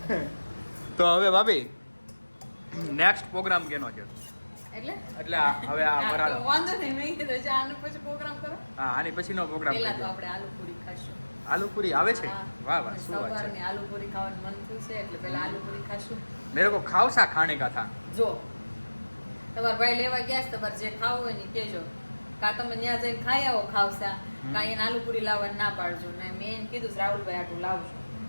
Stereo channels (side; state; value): both; inverted; correlation -1.00